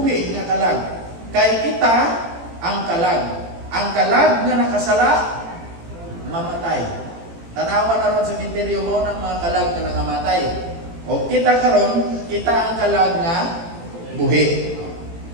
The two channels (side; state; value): left; late; 18 ms